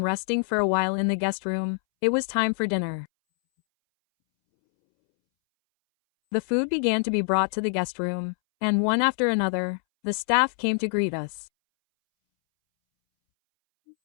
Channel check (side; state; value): right; silent; 62 dB below the other